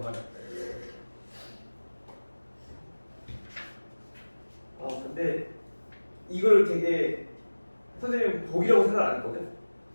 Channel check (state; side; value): inverted; both; correlation -1.00